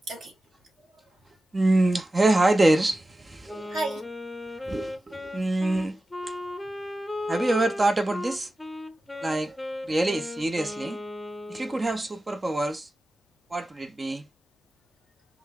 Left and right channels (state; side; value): normal; both; correlation 0.94